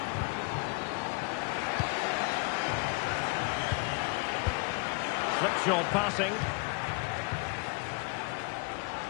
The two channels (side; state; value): right; quieter; 32.3 dB